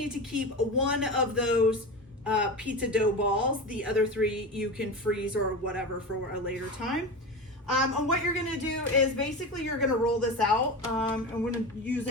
to keep 1 of those pizza dough balls. The other 3 you can freeze or whatever for a later time. And what you're gonna do is basically you're gonna roll this out. I'm gonna use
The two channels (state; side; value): normal; both; correlation 0.25